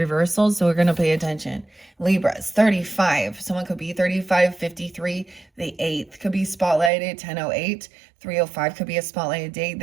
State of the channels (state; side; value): drops out; left; at 6.9 s